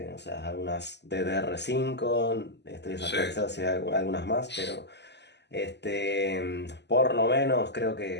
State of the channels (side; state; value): right; late; 0.50 ms